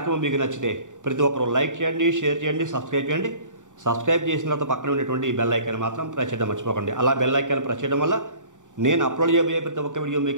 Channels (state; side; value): late; left; 0.86 ms